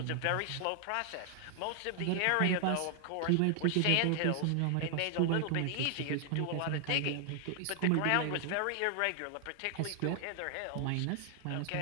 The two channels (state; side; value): different; both; correlation 0.00